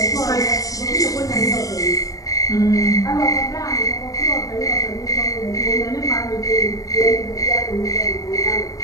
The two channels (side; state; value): right; late; 0.17 ms